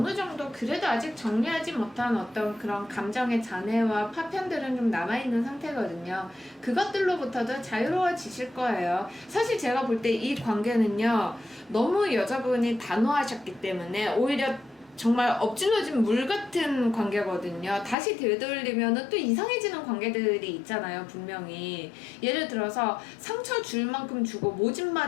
정도 그래도 아직 정리하지 못한 어떤 그런 감정의 잔해와 파편들은 좀 남아있는 상태거든요. 그것들로부터도 자유로워지실 거예요. 사실 제가 볼 때 이 관계는요, 너무 여자분이 단호하셨기 때문에 오히려 정말 엎질러진 물 같은 관계거든요. 다시 되돌리면은 또 이상해지는 관계들이 있잖아요, 분명히. 예를 들어서 상처 줄 만큼 주고 모진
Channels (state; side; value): drops out; right; at 17.9 s